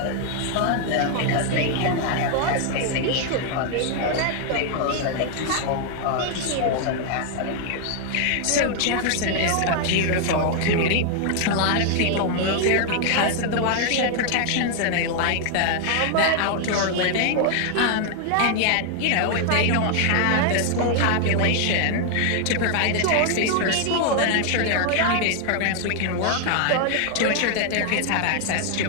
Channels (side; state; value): both; different; correlation 0.00